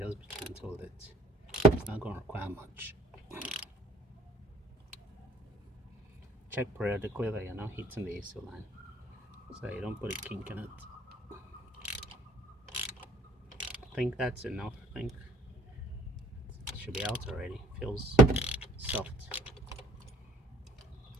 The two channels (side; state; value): both; normal; correlation 0.57